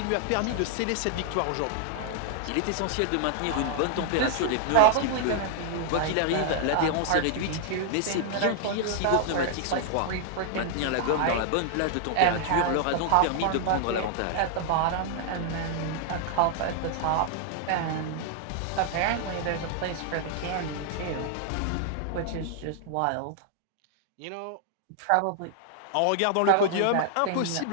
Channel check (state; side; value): different; both; correlation 0.00